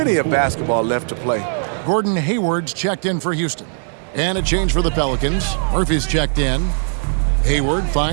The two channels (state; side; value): silent; left; digital silence